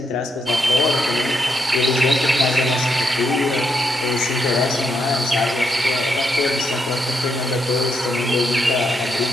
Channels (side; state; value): both; normal; correlation 0.80